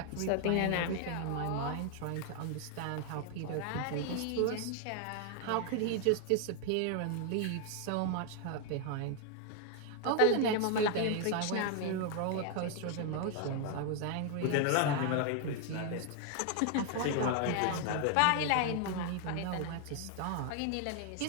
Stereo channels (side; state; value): both; different; correlation 0.00